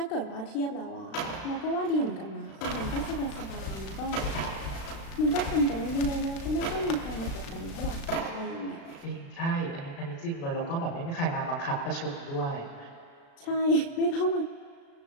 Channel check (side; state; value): right; late; 36 ms